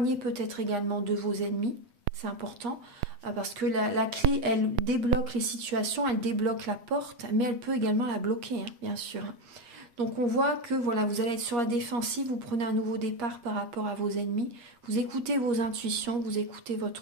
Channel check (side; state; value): left; late; 8.4 ms